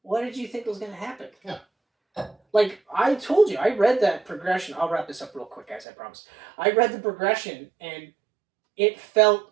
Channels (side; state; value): left; drops out; at 5.9 s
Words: what did you think was going to happen? Yeah. Like, I told you, I read that progression. I'll wrap this up real quick, guys, I promise. I read the progression, and it